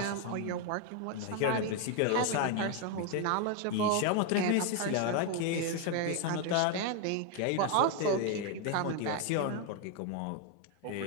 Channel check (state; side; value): different; both; correlation 0.01